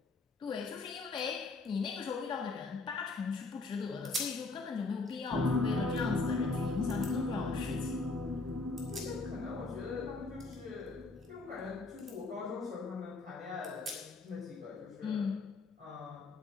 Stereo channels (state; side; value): quieter; right; 3.7 dB